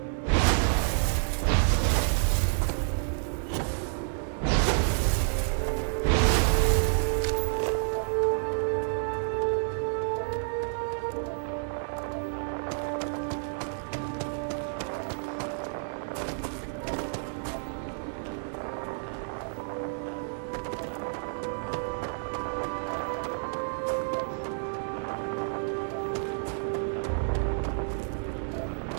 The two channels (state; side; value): silent; left; 58 dB below the other